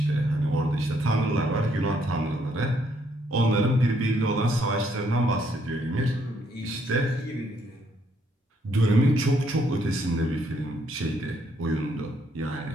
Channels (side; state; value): both; normal; correlation 0.70